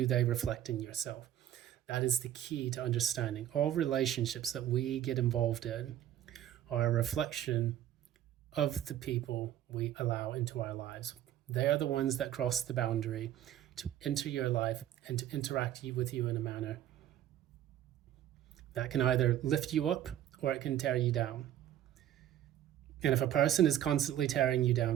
they reflect in yourself? That is the key to understanding. All relationships that we get involved in are a reflection of the people we allow into our lives. They are the ones that cross the boundary to enter your life and to interact with you in a manner that can either lift you up or it can tear you down. And if a person is constantly tearing you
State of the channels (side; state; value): left; quieter; 11.7 dB